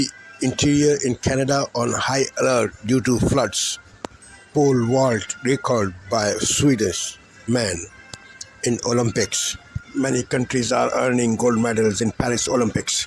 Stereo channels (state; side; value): identical; both; correlation 1.00